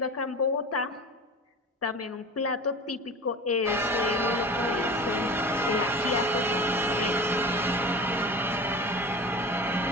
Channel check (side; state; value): both; normal; correlation 0.35